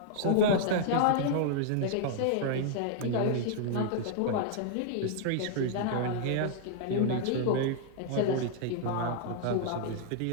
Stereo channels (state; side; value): different; both; correlation -0.01